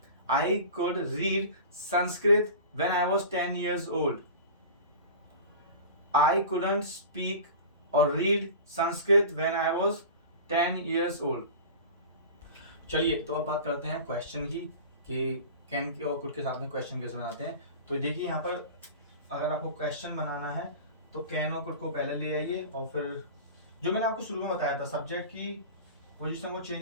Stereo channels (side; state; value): both; inverted; correlation -0.35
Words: I could read Sanskrit when I was 10 years old. I couldn't speak or read Sanskrit when I was 10 years old. चलिए, तो अब बात करते हैं क्वेश्चन की, कि कैन के और कुड के साथ में क्वेश्चन कैसे बनाते हैं। तो देखिए यहाँ पर अगर आपको क्वेश्चन बनाना है तो कैन और कुड को पहले ले आइए, और फिर जो मैंने आपको शुरू में बताया था, सब्जेक्ट की पोजीशन को